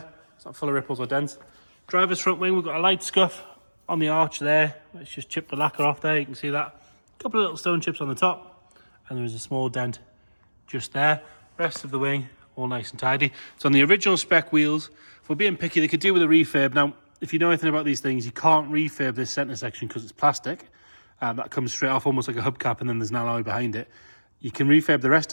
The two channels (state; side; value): inverted; both; correlation -1.00